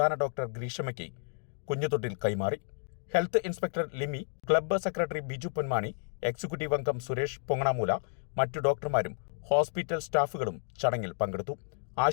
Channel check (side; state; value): right; silent; digital silence